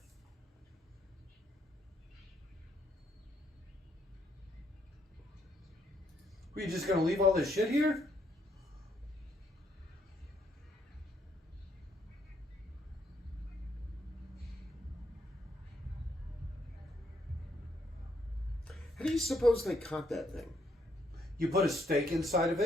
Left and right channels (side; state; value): both; normal; correlation 0.73